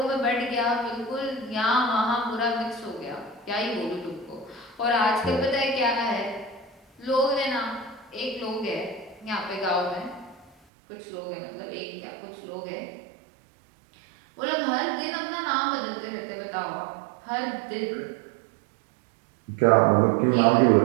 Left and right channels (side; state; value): left; drops out; at 10.5 s